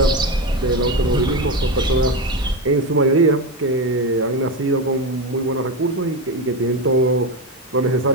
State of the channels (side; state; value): both; normal; correlation 0.15